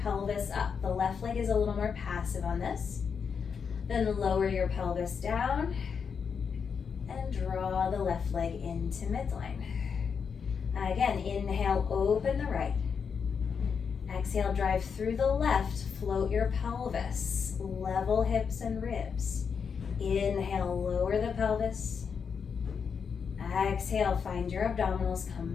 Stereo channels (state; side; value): quieter; right; 6.3 dB